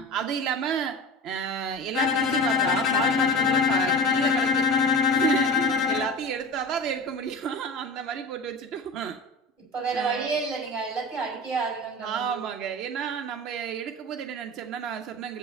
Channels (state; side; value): normal; both; correlation 0.31